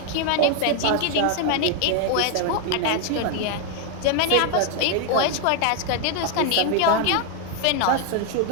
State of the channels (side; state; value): both; different; correlation 0.01